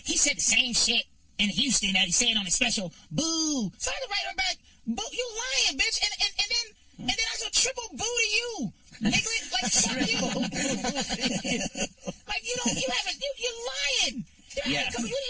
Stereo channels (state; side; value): identical; both; correlation 1.00